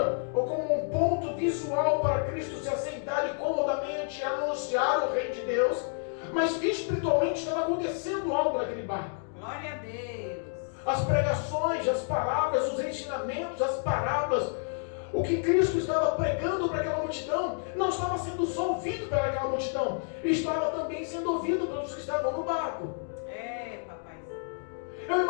ou como um ponto visual para Cristo se assentar e comodamente anunciar o reino de Deus, mas espiritualmente estava acontecendo algo naquele barco. Glória a Deus. As pregações, as palavras, os ensinamentos, as parábolas, o que Cristo estava pregando para aquela multidão não estava sendo só ouvido pelaquela multidão, estava também sendo ouvido pelos que estavam no barco. Papai. Eu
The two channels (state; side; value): silent; right; 58 dB below the other